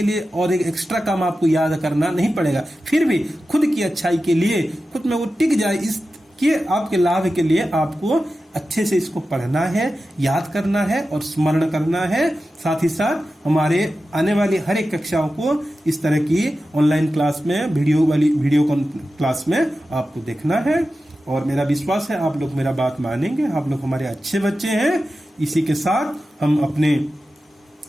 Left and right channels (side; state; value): both; normal; correlation 0.93